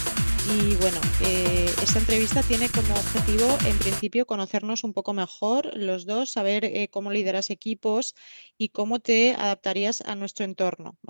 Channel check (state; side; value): inverted; both; correlation -1.00